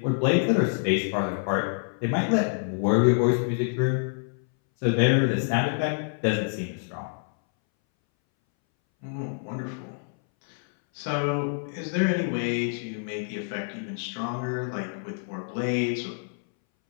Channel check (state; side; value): silent; right; 60 dB below the other